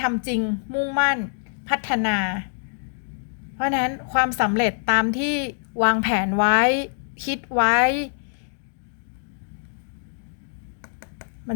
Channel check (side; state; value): right; silent; digital silence